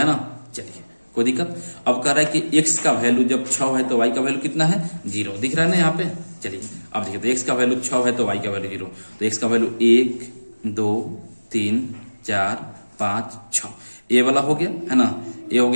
ना। चलिए कोई दिक्कत। अब कह रहा है कि x का वैल्यू जब 6 है तो y का वैल्यू कितना है 0, दिख रहा है ना यहाँ पे। चलिए अब देखिए, तो x का वैल्यू 6 है तो y का वैल्यू 0, तो x का वैल्यू 1 2 3 4 5 6, ये वाला हो गया है ना। ये हो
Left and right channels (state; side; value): inverted; both; correlation -1.00